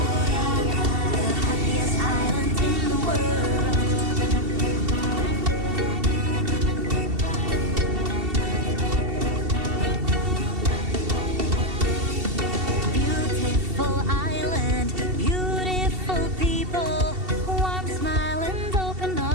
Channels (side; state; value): left; late; 2.7 ms